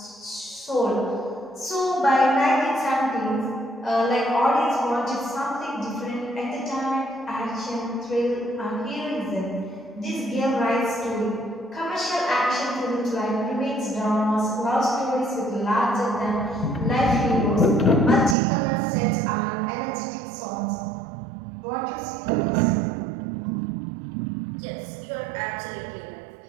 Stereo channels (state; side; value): drops out; left; at 18.4 s